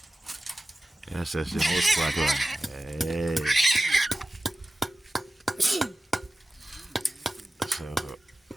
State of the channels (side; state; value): both; normal; correlation 0.94